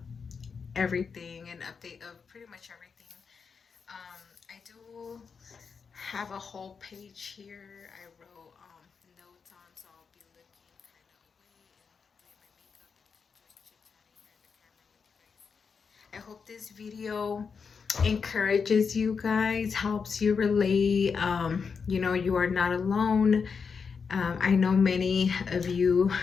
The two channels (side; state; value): right; quieter; 5.7 dB